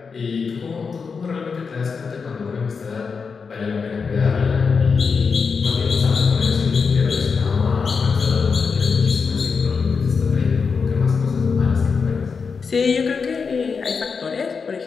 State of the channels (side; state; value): right; quieter; 5.4 dB